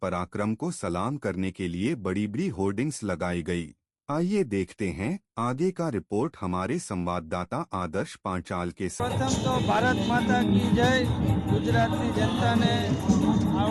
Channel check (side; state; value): both; identical; correlation 1.00